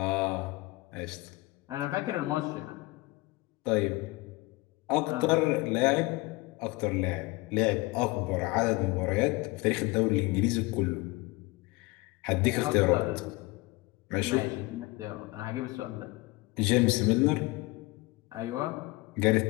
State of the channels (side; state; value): right; quieter; 22.7 dB